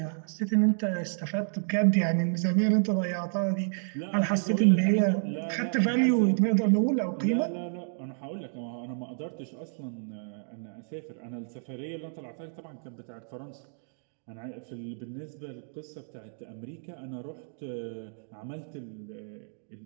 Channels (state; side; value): silent; left; digital silence